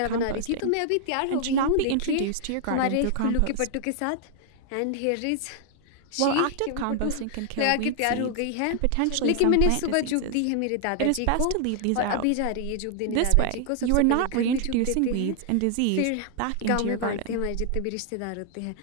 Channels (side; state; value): both; different; correlation 0.00